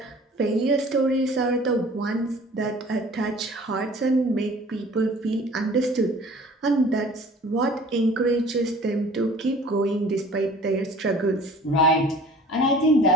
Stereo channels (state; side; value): normal; both; correlation 0.48